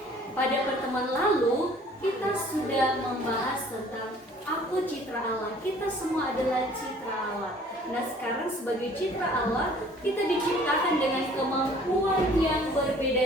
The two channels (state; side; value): normal; both; correlation 0.53